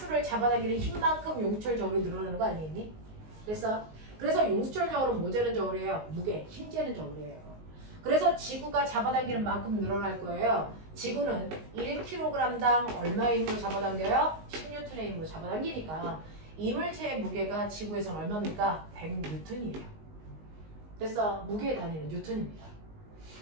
잡아당기는 힘만큼 용수철 저울이 늘어나는 거 아니겠니? 그래서 용수철 저울은 뭐 재는 저울이에요? 무게, 힘 재는 저울이에요. 그래서 지구가 잡아당기는 만큼 늘어날 거예요. 지구는 1kg당 얼마의 힘으로 잡아당겨요? 10N의 힘으로 잡아당기니까 이 물체의 무게가 지구에서는 얼마입니까? 100N이에요. 그래서 무게의 단위는 뉴턴입니다.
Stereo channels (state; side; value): late; left; 19 ms